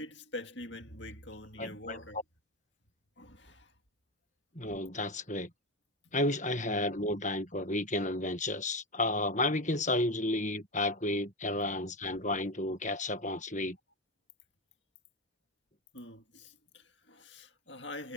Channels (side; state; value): both; normal; correlation 0.16